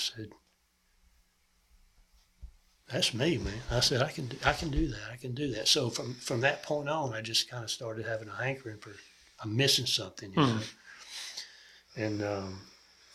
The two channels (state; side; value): identical; both; correlation 1.00